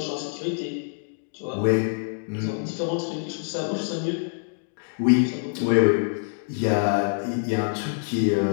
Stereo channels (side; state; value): right; silent; digital silence